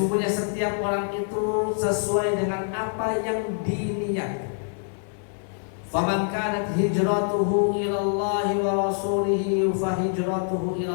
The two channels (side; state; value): right; silent; digital silence